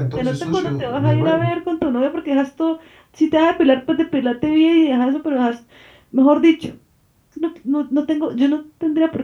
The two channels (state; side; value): identical; both; correlation 1.00